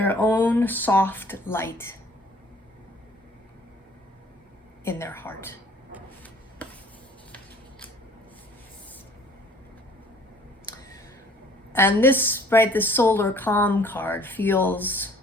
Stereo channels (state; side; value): normal; both; correlation 0.55